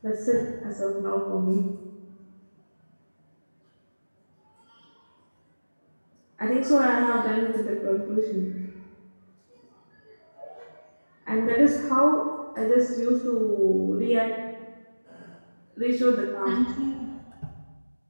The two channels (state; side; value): inverted; both; correlation -1.00